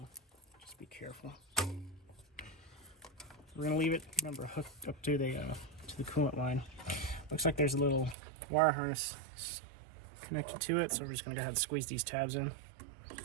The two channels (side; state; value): left; drops out; at 8.2 s